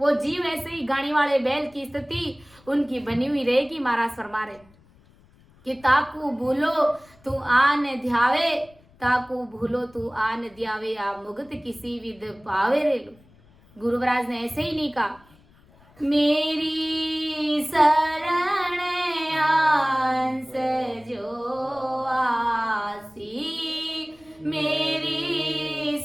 जीव ऐसे ही गाड़ी वाले बैल की स्थिति उनकी बनी हुई रहेगी। महाराज फरमा रहे कि ताकू भूलो तू आन ध्यावे, ताकू भूलो तू आन ध्यावे, आ मुगत किसी विद पावे रे। गुरु महाराज ने ऐसे ही नहीं कहा मेरी शरण आंस जो आसी, मेरी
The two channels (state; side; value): noise; left; rumble, 28 dB below the sound